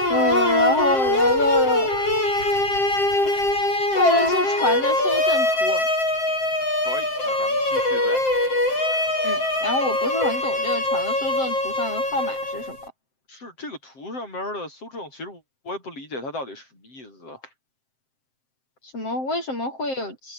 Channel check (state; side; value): late; right; 7.6 ms